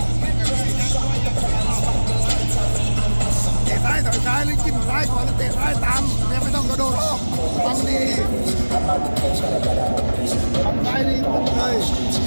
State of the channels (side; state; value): both; inverted; correlation -1.00